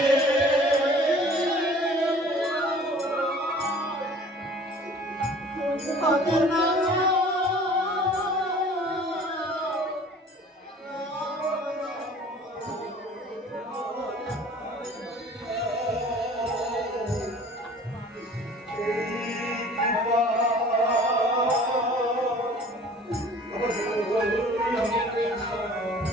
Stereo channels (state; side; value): normal; both; correlation 0.48